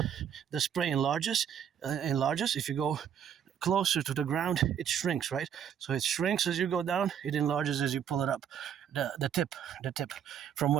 spray enlarges. If you go closer to the ground, it shrinks, right? So it shrinks as you go down, it enlarges as you pull it up. The tip from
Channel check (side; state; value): left; quieter; 8.7 dB